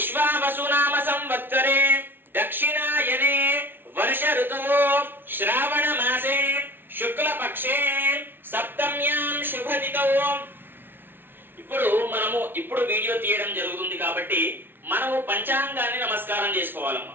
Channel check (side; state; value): left; late; 0.10 ms